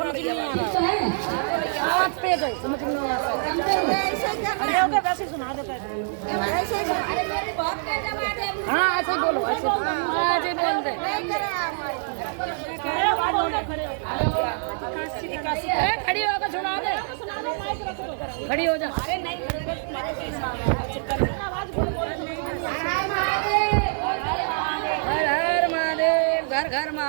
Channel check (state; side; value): silent; left; digital silence